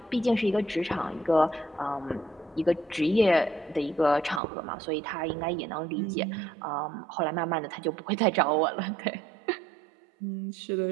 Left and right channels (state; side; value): drops out; left; at 4.4 s